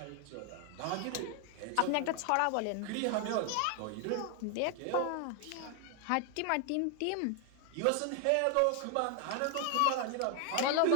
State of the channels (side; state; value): both; different; correlation 0.00